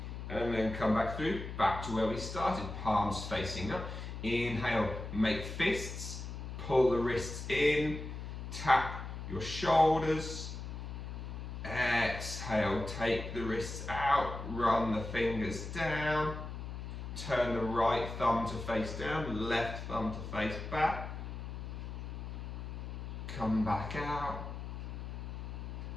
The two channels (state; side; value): noise; left; hum, 7 dB below the sound